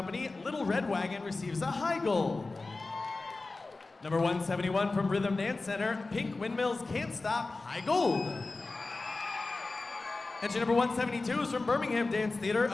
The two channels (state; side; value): quieter; right; 3.5 dB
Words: Little Red Wagon, receives a high gold. Number 171 from Rhythm Dance Center, Pink Windmills Can't Stop, high gold. Entry number 172 is from Birmingham Dance Theater,